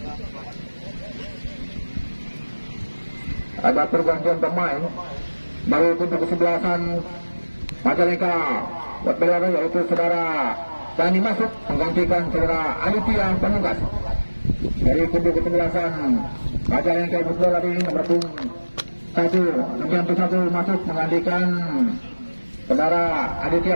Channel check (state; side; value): inverted; both; correlation -1.00